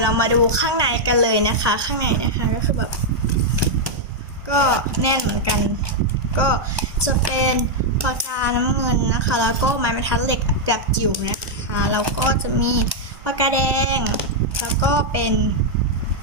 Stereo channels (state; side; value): late; left; 1.2 ms